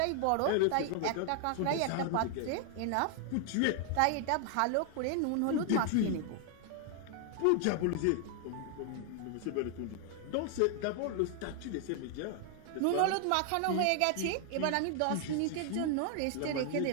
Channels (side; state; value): both; different; correlation 0.00